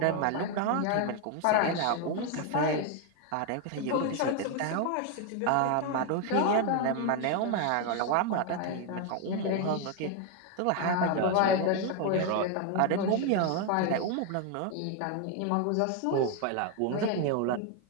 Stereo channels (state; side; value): different; both; correlation 0.01